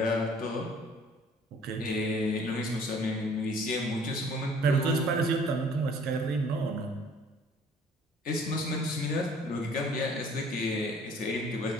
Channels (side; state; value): both; normal; correlation 0.54